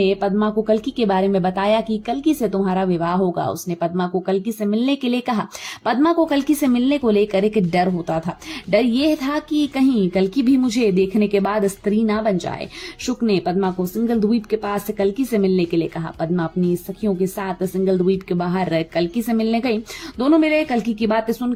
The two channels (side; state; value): both; identical; correlation 1.00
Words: पद्मा को कल्कि के बारे में बताया कि कल्कि से तुम्हारा विवाह होगा। उसने पद्मा को कल्कि से मिलने के लिए कहा। पद्मा को कल्कि से मिलने को लेकर एक डर होता था। डर यह था कि कहीं कल्कि भी मुझे देखने के बाद स्त्री ना बन जाए। शुक ने पद्मा को सिंगल द्वीप के पास कल्कि से मिलने के लिए कहा। पद्मा अपनी सखियों के साथ सिंगल द्वीप के बाहर कल्कि से मिलने गई। दोनों मिले। कल्कि की बातें